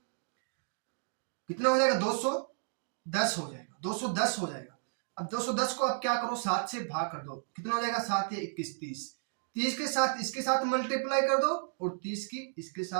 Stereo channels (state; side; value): silent; left; digital silence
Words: 210 हो जाएगा, 210 हो जाएगा। अब 210 को अब क्या करो, 7 से भाग कर दो, कितना हो जाएगा, 7 या 21 30 के साथ इसके साथ मल्टीप्लाई कर दो और 30 की इसके